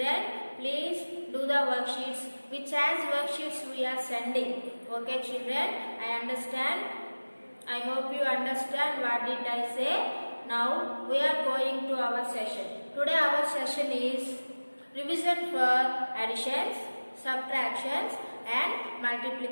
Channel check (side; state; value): both; inverted; correlation -1.00